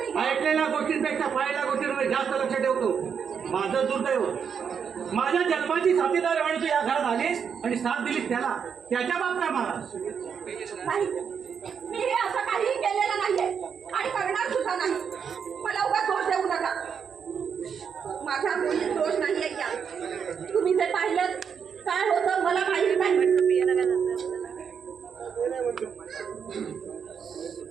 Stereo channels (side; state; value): left; quieter; 7.0 dB